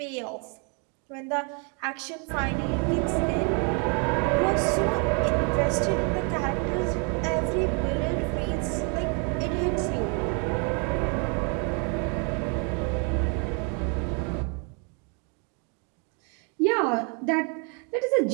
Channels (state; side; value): quieter; left; 36.4 dB